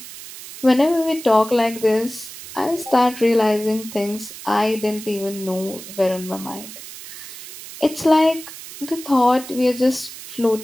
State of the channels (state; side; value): noise; right; hiss, 14 dB below the sound